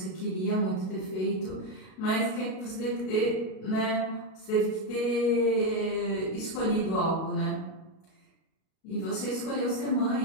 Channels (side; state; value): right; late; 37 ms